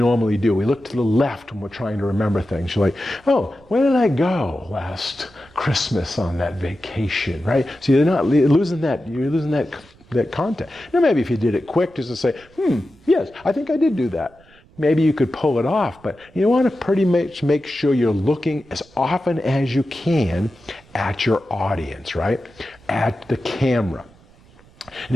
do. We look to the left when we're trying to remember things. You're like, oh, where did I go last Christmas on that vacation, right? So you're not losing that. You're losing that contact. Now maybe if you did it quick, just to say, yes, I think I did do that. Maybe you could pull it off, but you want to pretty much make sure you're looking as often as you can at your audience, right? At the camera. And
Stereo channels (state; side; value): noise; right; rumble, 27 dB below the sound